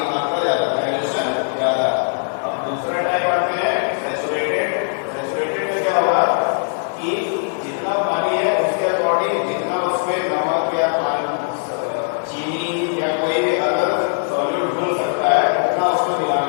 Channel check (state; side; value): silent; right; 66 dB below the other